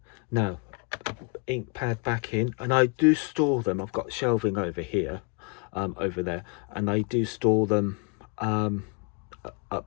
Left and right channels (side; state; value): right; quieter; 33.9 dB